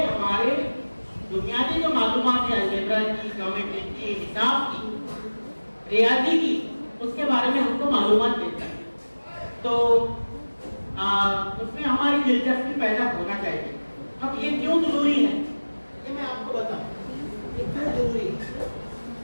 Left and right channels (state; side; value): inverted; both; correlation -1.00